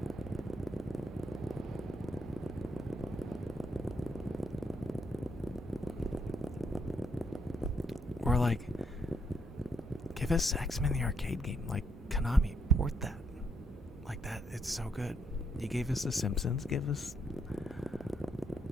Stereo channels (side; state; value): both; normal; correlation 0.75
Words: Or like, give us X-Men the arcade game, like Konami. support that. Like that, it's so good. You gave us The Simpsons, give us...